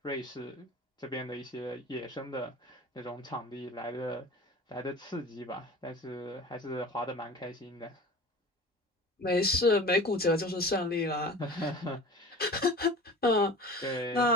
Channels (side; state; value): both; normal; correlation 0.39